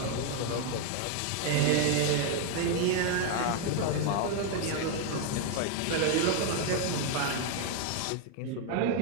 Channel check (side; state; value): both; different; correlation 0.00